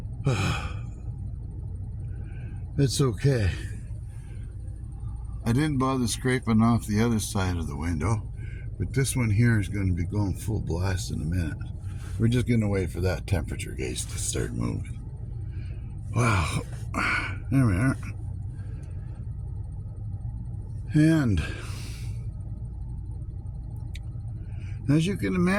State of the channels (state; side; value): identical; both; correlation 1.00